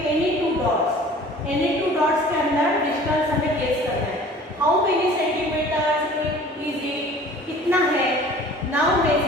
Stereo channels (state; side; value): normal; both; correlation 0.47